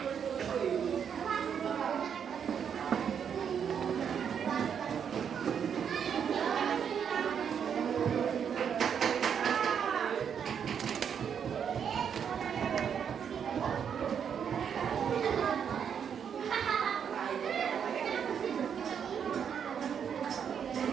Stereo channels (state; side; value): quieter; left; 7.7 dB